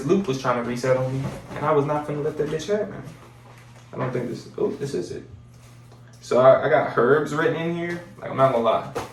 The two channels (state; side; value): identical; both; correlation 1.00